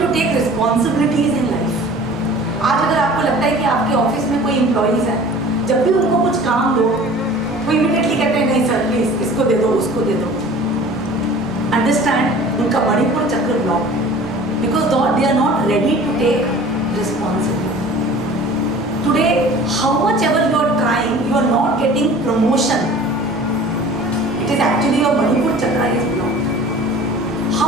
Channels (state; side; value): normal; both; correlation 0.44